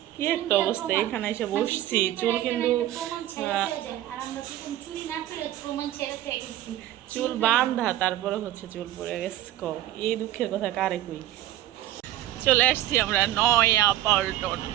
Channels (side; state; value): left; quieter; 13.6 dB